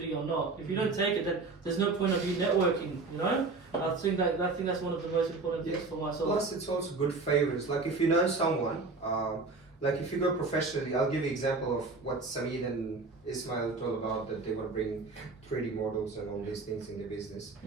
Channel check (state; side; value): quieter; left; 3.8 dB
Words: or not. If you don't take it, then there's no point of you networking, I think that's one of the most important things for myself. plus, it's also good favors. Like if you know someone, like if you go professionally, I'll give you example of what Samir and Ismail told about, that they want to bring 3D models and all these things in the business.